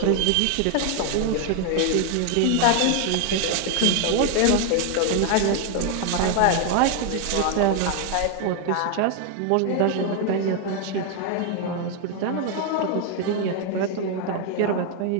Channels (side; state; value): both; different; correlation 0.01